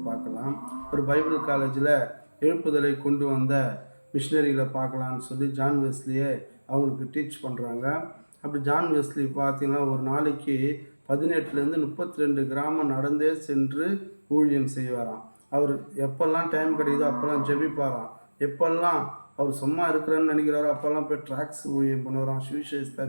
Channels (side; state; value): both; inverted; correlation -1.00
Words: பார்க்கலாம். ஒரு பைபிள் காலேஜில் எழுப்புதலை கொண்டு வந்த மிஷினரிகளை பார்க்கலான்னு சொல்லி ஜான் வெஸ்லியை அவங்களுக்கு டீச் பண்ணுறாங்க. அப்படி ஜான் வெஸ்லி பார்த்தீங்கன்னா ஒரு நாளைக்கு 18லேருந்து 32 கிராமம் நடந்தே சென்று ஊழியம் செய்வாராம். அவர் எப்பெல்லாம் டைம் கிடைக்குதோ அப்போல்லாம் ஜெபிப்பாராம். எப்பெல்லாம் அவர் சும்மா இருக்கிறேன்னு நினைக்கிறாரோ அப்போல்லாம் போய் ட்ராக்ஸ் ஊழியம் பண்ணுவாராம், சுவிசேஷத்தை